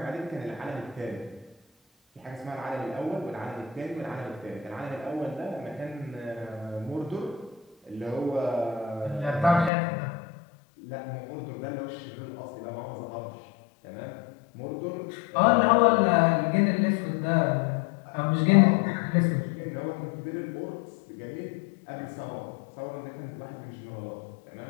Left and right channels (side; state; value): right; drops out; at 9.7 s